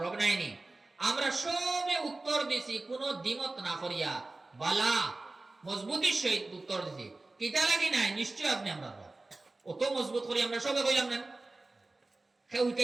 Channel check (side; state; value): left; quieter; 3.1 dB